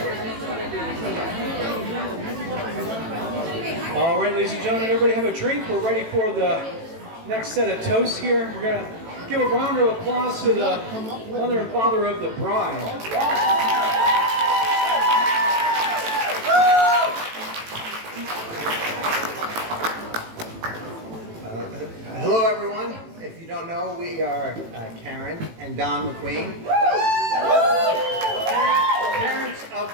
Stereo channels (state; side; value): late; left; 18 ms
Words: All right, ladies and gentlemen, everybody have a drink. We're ready for the next set of toasts here. We're going to give a round of applause to the mother and father of the bride. Hello, everyone. If you don't know, we are Karen and Don McQueen, parents of